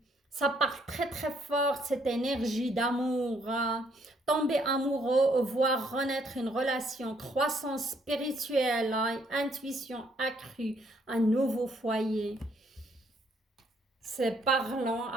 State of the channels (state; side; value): normal; both; correlation 0.69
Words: Ça part très très fort, cette énergie d'amour, hein. Tomber amoureux, voir renaître une relation, croissance spirituelle, hein, intuition accrue, un nouveau foyer. C'est parlant.